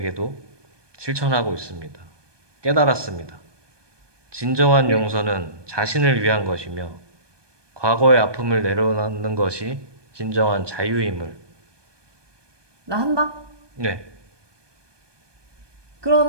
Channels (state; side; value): late; left; 1.2 ms